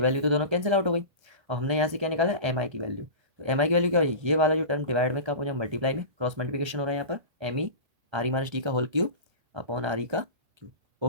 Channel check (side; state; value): left; late; 1.3 ms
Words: वैल्यू तो दोनों कैंसिल आउट हो गई, और हमने यहाँ से क्या निकाला एम आई की वैल्यू। तो एम आई की वैल्यू क्या होगी, ये वाला जो टर्म डिवाइड में कब हो जाए मल्टीप्लाई में, क्रॉस मल्टीप्लिकेशन हो रहा है यहाँ पर, M E R E minus T का whole cube upon R E का क्यूब।